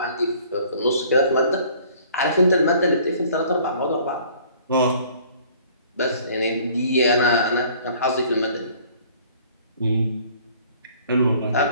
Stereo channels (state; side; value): inverted; both; correlation -0.54